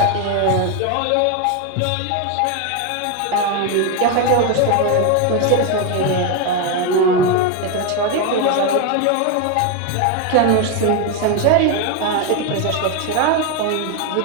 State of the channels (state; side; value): different; both; correlation 0.02